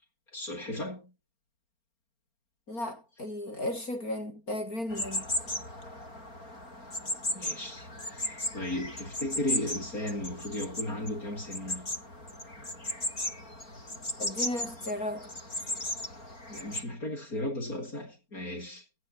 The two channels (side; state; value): right; late; 4.4 ms